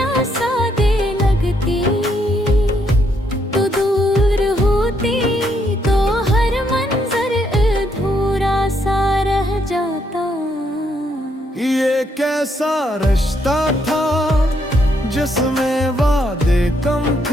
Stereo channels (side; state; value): both; normal; correlation 0.74